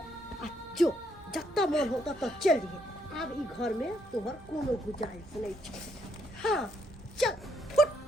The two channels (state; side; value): normal; both; correlation 0.73